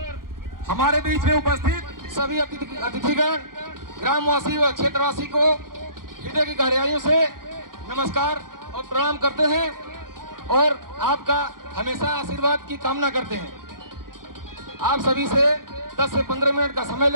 हमारे बीच में उपस्थित सभी अतिथिगण, ग्रामवासी व क्षेत्रवासी को हृदय की गहराइयों से नमस्कार और प्रणाम करते हैं और आपका हमेशा आशीर्वाद की कामना करते हैं। आप सभी से 10 से 15 मिनट का समय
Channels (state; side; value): late; left; 0.92 ms